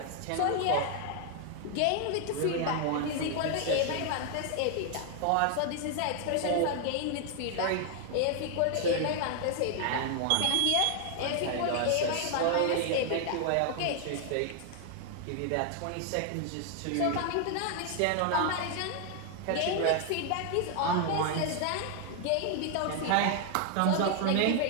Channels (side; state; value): both; different; correlation 0.00